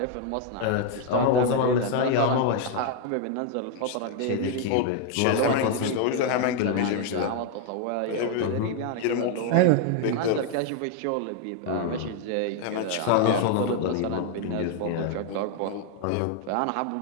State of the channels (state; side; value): different; both; correlation 0.00